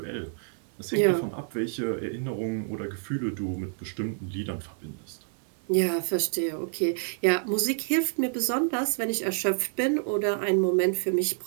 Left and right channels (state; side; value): silent; left; 59 dB below the other